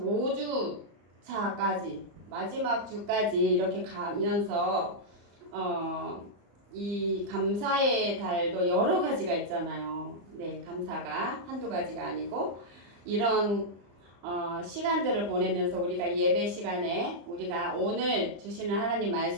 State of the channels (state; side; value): late; left; 35 ms